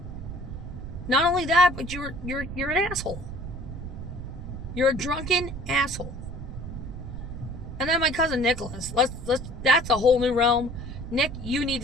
Not only that, but you're an asshole. You're a drunken asshole. And then my cousin Nicholas, that's a whole new realm. Nick, you need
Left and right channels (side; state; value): right; noise; rumble, 8 dB below the sound